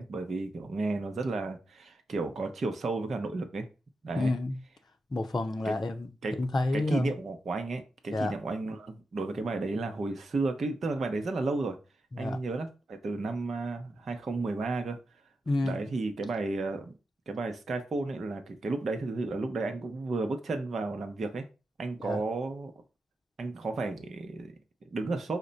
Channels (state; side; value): normal; both; correlation 0.87